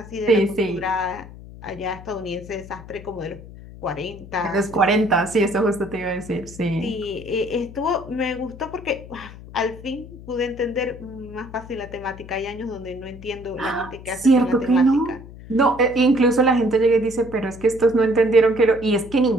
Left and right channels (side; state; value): left; noise; hum, 16 dB below the sound